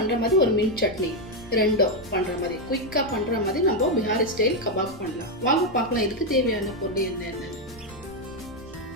மாதிரி ஒரு மின்ட் சட்னி ரெண்டும் பண்ற மாதிரி குயிக்கா பண்ற மாதிரி நம்ம பிஹாரி ஸ்டைல் கபாப் பண்ணலாம். வாங்க பார்க்கலாம் இதுக்கு தேவையான பொருள் என்னென்ன.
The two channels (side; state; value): left; noise; rumble, 20 dB below the sound